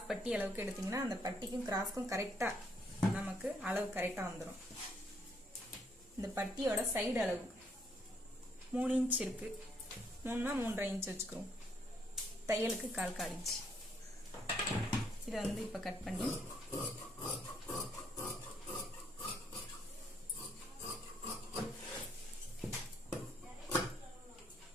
பட்டி அளவுக்கு எடுத்தீங்கன்னா அந்த பட்டிக்கும் கிராஸ்க்கும் கரெக்டாக நமக்கு அளவு கரெக்டாக வந்துடும். இந்த பட்டியோட சைடு அளவு 3 இன்ச் இருக்கு. 3னா 3.5 இன்ச் வச்சுக்கிறோம். தையலுக்கு 1/4 இன்ச். இதை வந்து இப்போ கட் பண்ணி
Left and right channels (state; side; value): normal; both; correlation 0.70